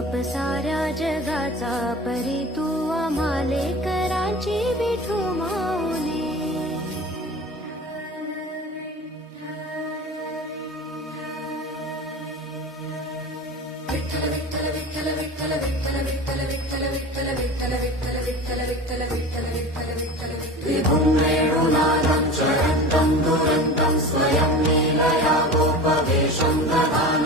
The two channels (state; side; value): normal; both; correlation 0.34